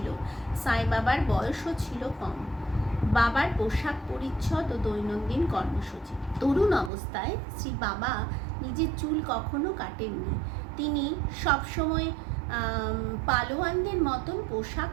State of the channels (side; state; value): left; drops out; at 6.9 s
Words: সাই বাবার বয়সও ছিল কম। বাবার পোশাক পরিচ্ছদ ও দৈনন্দিন কর্মসূচি। তরুণ অবস্থায় শ্রী বাবা নিজের চুল কখনো কাটেননি। তিনি সবসময় পালোয়ানদের মতন পোশাক